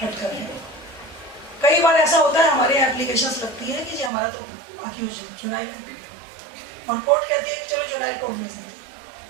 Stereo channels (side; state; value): left; drops out; at 4.1 s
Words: हटकर है। कई बार ऐसा होता है हमारे यहाँ एप्लीकेशंस लगती है कि जी हमारा तो अक्यूज जुवेनाइल है, और कोर्ट कहती है कि चलो जुवेनाइल कोर्ट भेज देते हैं।